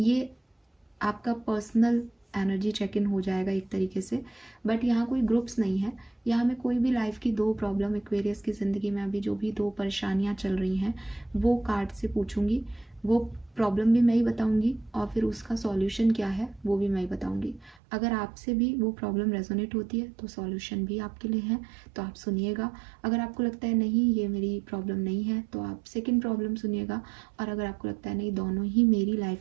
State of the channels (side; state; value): left; drops out; at 17.8 s